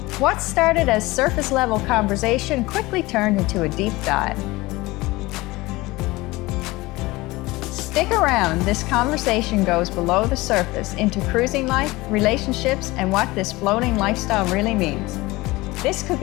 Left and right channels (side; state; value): right; quieter; 20.8 dB